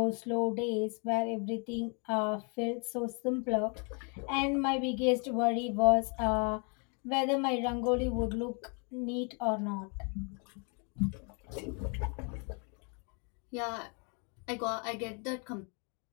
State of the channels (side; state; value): right; quieter; 36.8 dB